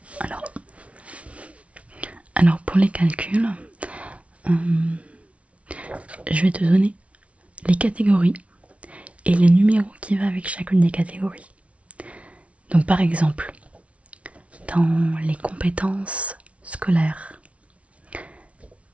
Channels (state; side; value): late; left; 0.063 ms